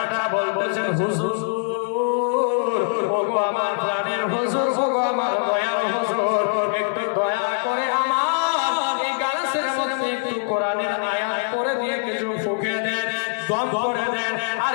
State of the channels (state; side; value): silent; right; digital silence